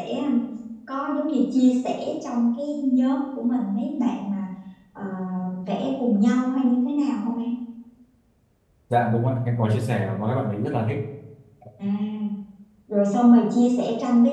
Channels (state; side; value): identical; both; correlation 1.00